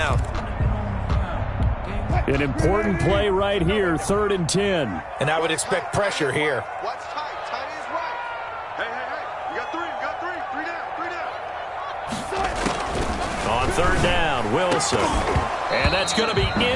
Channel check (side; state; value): both; identical; correlation 1.00